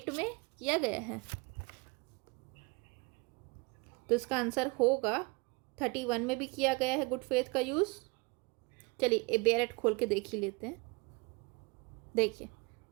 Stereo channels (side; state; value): left; quieter; 27.5 dB